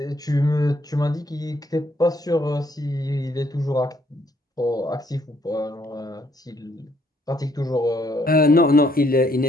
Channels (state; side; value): normal; both; correlation 0.69